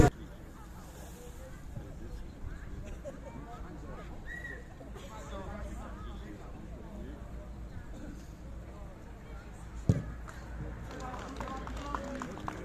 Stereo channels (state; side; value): identical; both; correlation 1.00